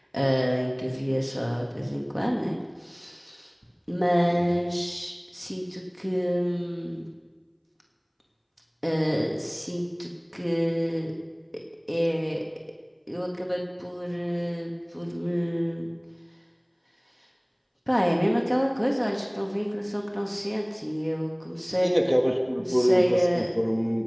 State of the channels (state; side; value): identical; both; correlation 1.00